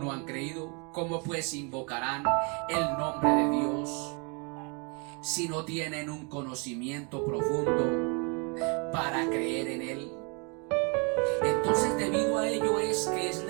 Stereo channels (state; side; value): quieter; left; 33.6 dB